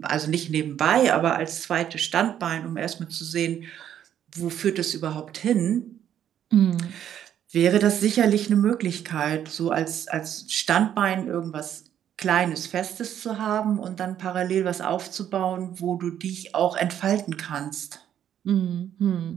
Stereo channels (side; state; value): left; quieter; 10.2 dB